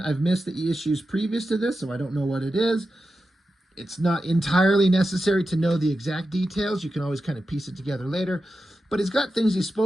I've missed the issues previous to this, so I don't know what it is. It's not entirely necessary to know the exact details. You can always kind of piece it together later. But he's got things he's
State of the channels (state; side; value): normal; both; correlation 0.91